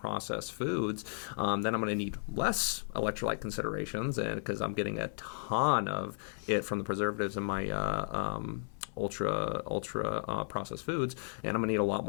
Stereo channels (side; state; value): right; silent; 55 dB below the other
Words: foods, then I'm going to need less electrolyte considerations, and because I'm getting a ton of it from the preservatives in my ultra processed foods, and I'm going to need a lot